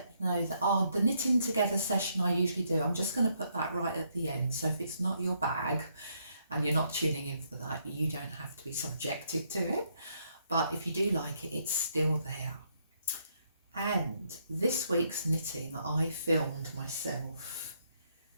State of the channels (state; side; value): inverted; both; correlation -0.74